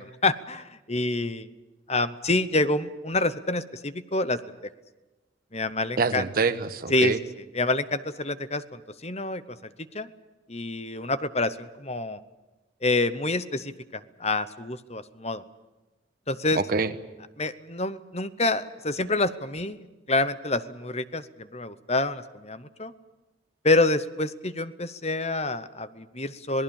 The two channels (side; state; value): both; normal; correlation 0.13